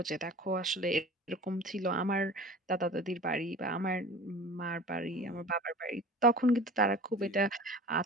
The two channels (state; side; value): normal; both; correlation 0.39